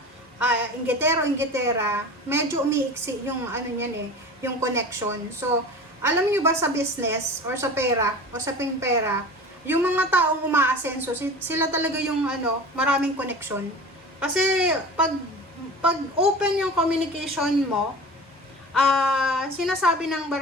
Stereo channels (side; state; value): both; normal; correlation 0.36